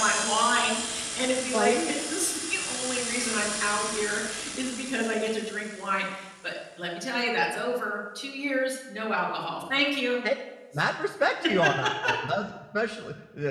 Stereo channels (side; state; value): both; identical; correlation 1.00